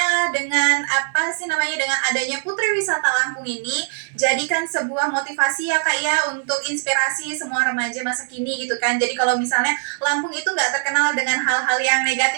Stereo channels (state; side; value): silent; left; 58 dB below the other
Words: dengan apa sih namanya, dengan adanya Putri Wisata Lampung ini jadikan sebuah motivasi ya Kak ya, untuk inspirasi semua remaja masa kini gitu kan. Jadi kalau misalnya Lampung itu nggak terkenal dengan hal-hal yang